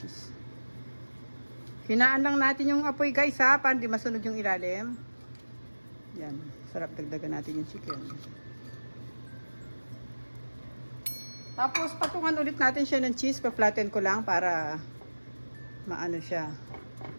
Hinaan lang natin yung apoy guys ha, para hindi masunog yung ilalim. Yan, sarap, dagdagan natin yung chicken. Tapos patungan ulit natin siya ng cheese, pa-flatten ko lang para maano siya.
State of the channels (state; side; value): inverted; both; correlation -1.00